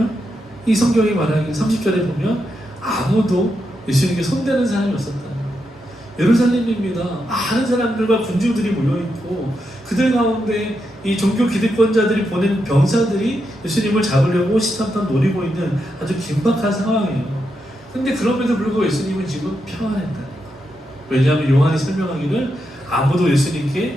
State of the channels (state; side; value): normal; both; correlation 0.84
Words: 이 성경이 말하기 30절에 보면 아무도 예수님께 손대는 사람이 없었다. 예루살렘입니다. 많은 사람들과 군중들이 모여있고 그들 가운데 이 종교 기득권자들이 보낸 병사들이 예수님을 잡으려고 시탐탐 노리고 있는 아주 긴박한 상황이에요. 근데 그럼에도 불구하고 예수님은 지금 평안했다. 왜냐하면 요한이 설명하기를 아무도